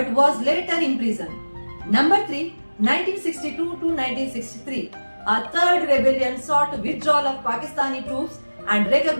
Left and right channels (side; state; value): both; inverted; correlation -1.00